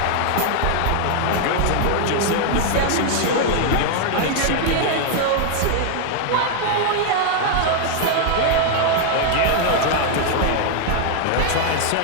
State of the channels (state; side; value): different; both; correlation 0.00